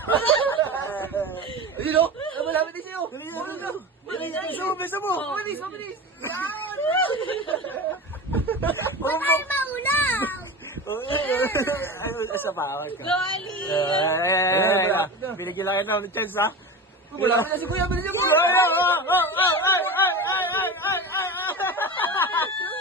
Ayun o, malapit din sa'yo. Bisa mo. Mabilis. Yan. Ay, maulaw! Ay, sa bawal ka. Go, Ali! Binigyan lang ng chance, ha? Malapit na si Kuya. Bilisan mo.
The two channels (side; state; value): both; normal; correlation 0.28